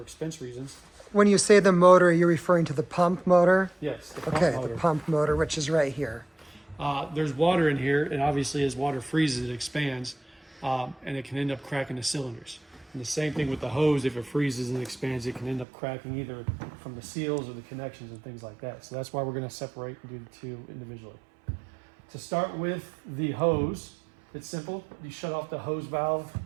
expense reasons. When you say the motor, you're referring to the pump motor? Yes, the pump motor. The pump motor, which is right here. There's water in here, and obviously as water freezes, it expands, and it can end up cracking the cylinders. And the same thing with the hose, if it freezes and expands, it can end up cracking either from the seals or the connections and things like that. So that's why we're going to separate and do the two individually. To start with the hose, it's simple. You shut off the hose valve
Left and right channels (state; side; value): drops out; left; at 15.7 s